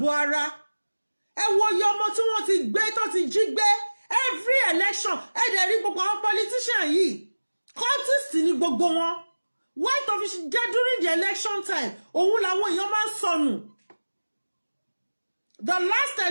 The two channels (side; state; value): both; inverted; correlation -1.00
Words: ara. Ẹ wo iye ọmọ tí wọ́n ti gbé, tó ti jí gbé. Every election, ẹ dẹ̀ rí gbogbo àwọn politician yìí. Cultist ni gbogbo wọn. White official jẹ́ during the election time. Òun làwọn èèyàn máa ń sọnù. The last